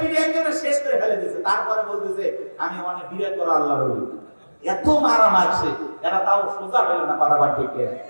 একজনে শেষ করে ফেলে দিয়েছে, তারপরে বলতেছে আমি অনেক বিরাট বড় আল্লাহর ওলি। এত মারা মারছে, এরা তাও সোজা হইল না, কথা বল ঠিক না?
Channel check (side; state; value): both; inverted; correlation -1.00